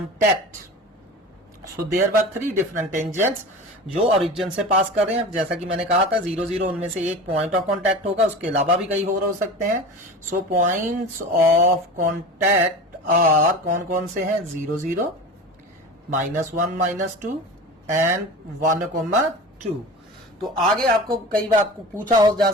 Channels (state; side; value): normal; both; correlation 0.33